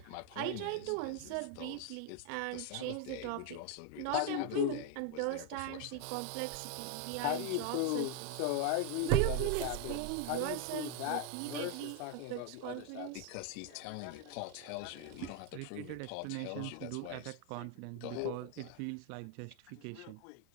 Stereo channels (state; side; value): different; both; correlation 0.01